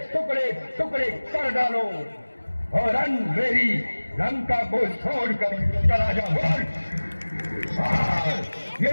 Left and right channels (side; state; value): both; inverted; correlation -1.00